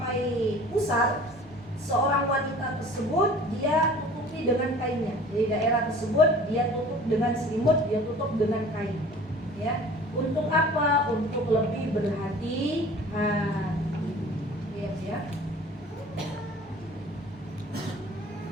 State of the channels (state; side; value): normal; both; correlation 0.45